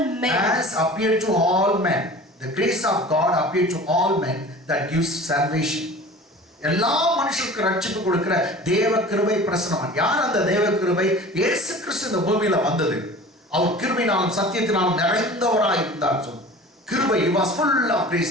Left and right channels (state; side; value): normal; both; correlation 0.40